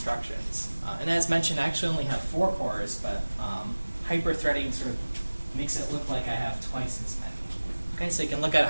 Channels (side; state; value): both; inverted; correlation -1.00